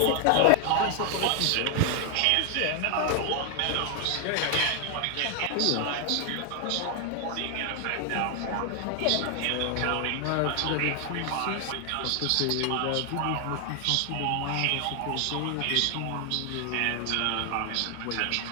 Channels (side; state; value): both; different; correlation 0.00